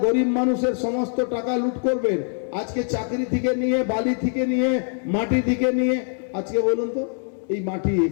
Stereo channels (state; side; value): silent; right; 56 dB below the other